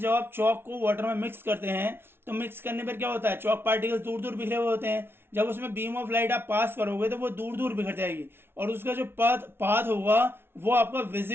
आप चॉक को वाटर में मिक्स करते हैं तो मिक्स करने पर क्या होता है, चॉक पार्टिकल्स दूर दूर बिखरे हुए होते हैं। जब उसमें बीम ऑफ लाइट आप पास करोगे तो वो दूर दूर बिखर जाएगी, और उसका जो पाथ होगा वो आपका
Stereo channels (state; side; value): late; left; 0.11 ms